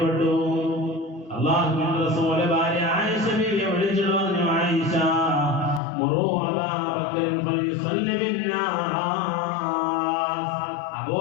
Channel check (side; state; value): right; drops out; at 5.8 s